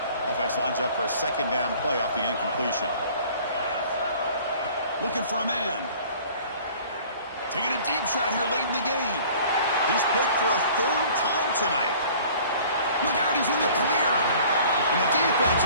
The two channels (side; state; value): both; inverted; correlation -0.49